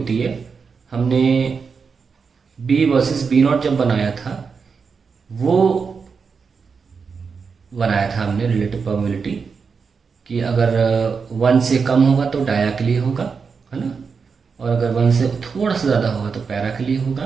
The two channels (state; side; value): quieter; left; 5.5 dB